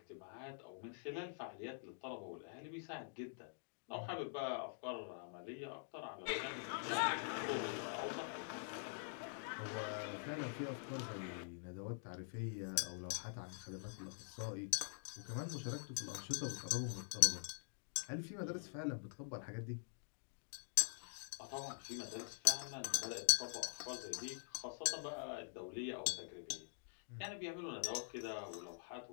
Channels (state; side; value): silent; right; digital silence